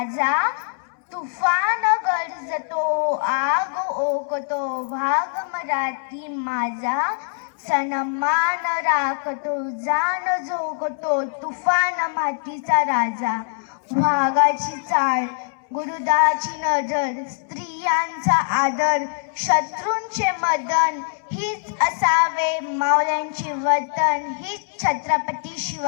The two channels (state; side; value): silent; right; 64 dB below the other